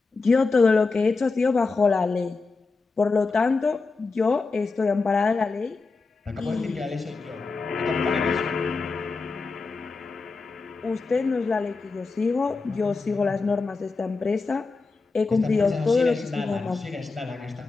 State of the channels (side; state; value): right; quieter; 4.1 dB